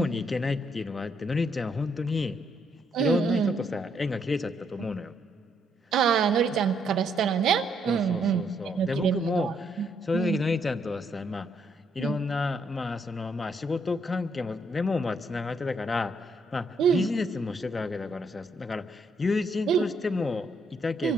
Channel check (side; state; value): both; normal; correlation 0.73